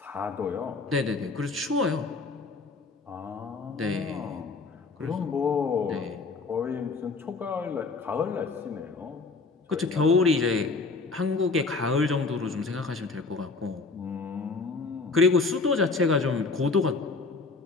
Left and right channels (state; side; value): quieter; right; 4.1 dB